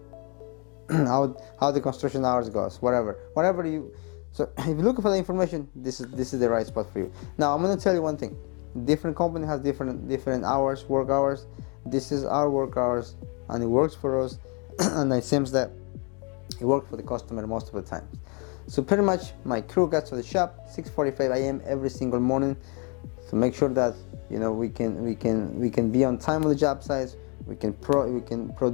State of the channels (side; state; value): right; quieter; 34.3 dB